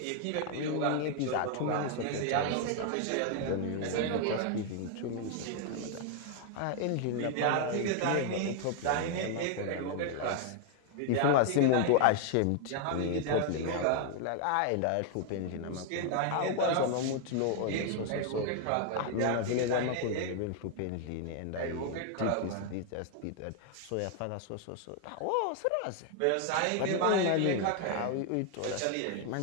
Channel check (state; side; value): different; both; correlation 0.00